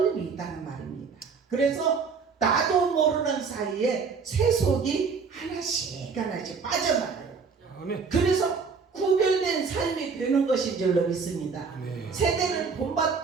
있다는 말입니다. 그래서 나도 모르는 사이에 세속이 하나씩 빠져나가요. 그래서 구별된 삶이 되는 것인 줄로 믿습니다. 세대를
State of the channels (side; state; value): left; quieter; 5.3 dB